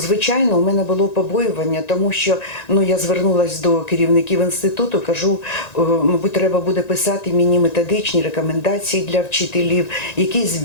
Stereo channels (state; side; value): late; right; 1.9 ms